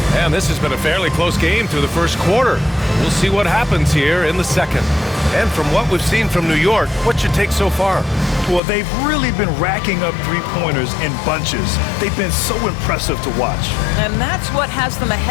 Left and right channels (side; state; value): right; drops out; at 8.6 s